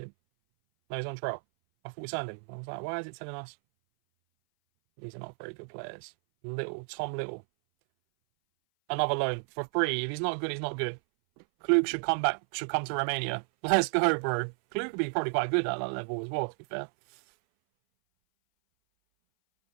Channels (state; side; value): silent; left; 57 dB below the other